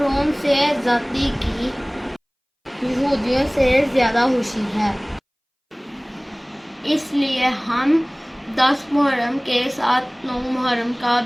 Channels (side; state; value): both; identical; correlation 1.00